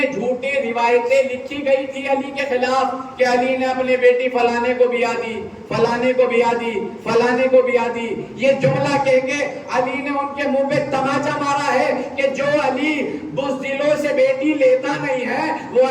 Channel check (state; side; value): identical; both; correlation 1.00